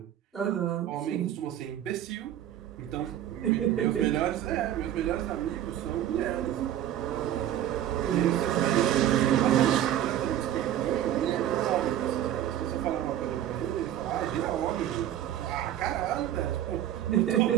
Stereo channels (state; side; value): quieter; left; 11.6 dB